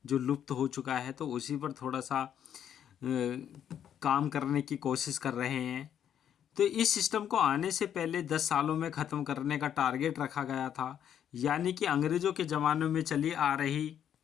जो लुप्त हो चुका है, तो उसी पर थोड़ा सा काम करने की कोशिश कर रहे हैं। तो इस सिस्टम को आने से पहले 10 सालों में ख़त्म करने का टारगेट रखा गया था, यानी कि अंग्रेज़ों के ज़माने में चली आ रही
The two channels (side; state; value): right; quieter; 9.5 dB